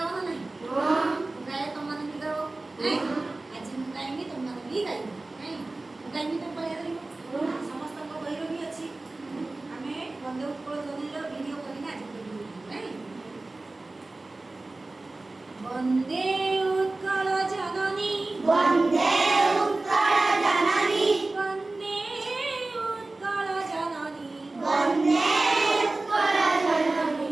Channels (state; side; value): quieter; left; 3.1 dB